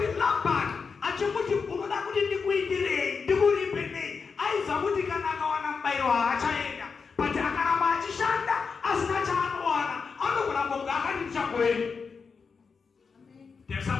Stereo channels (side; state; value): right; quieter; 5.3 dB